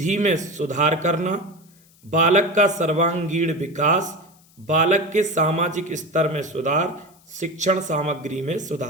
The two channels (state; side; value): noise; left; hiss, 30 dB below the sound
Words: में सुधार करना, बालक का सर्वांगीण विकास, बालक के सामाजिक स्तर में सुधार, शिक्षण सामग्री में